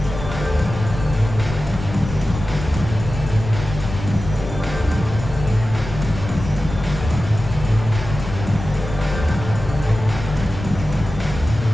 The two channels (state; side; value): noise; left; rumble, 9 dB below the sound